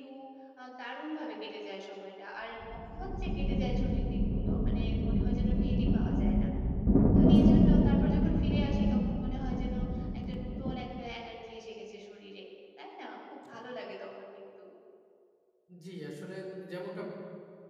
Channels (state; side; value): identical; both; correlation 1.00